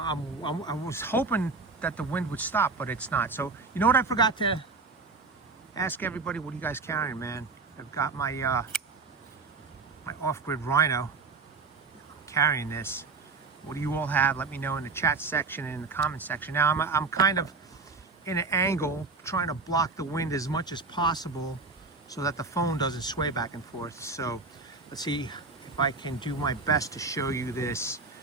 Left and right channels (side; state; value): left; quieter; 4.1 dB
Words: was hoping that the wind would stop, but it's not. So you know what I forgot to ask everybody? What are you guys carrying, man? I've got my my off-grid Rhino. I'm carrying this. What do you all have? Let me know in the chat section and in the comment section. Now I'm kind of in an angle, trying to block the wind as much as possible so that the phone doesn't sway back and forth. So let's see if I can do my best to show you this